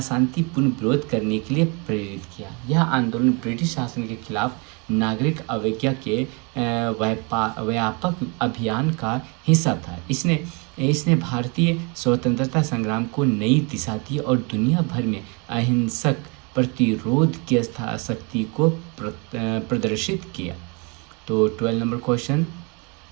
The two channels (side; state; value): left; quieter; 32.0 dB